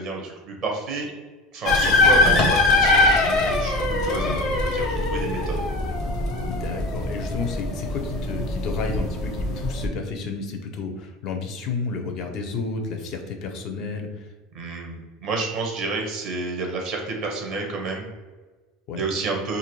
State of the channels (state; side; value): normal; both; correlation 0.32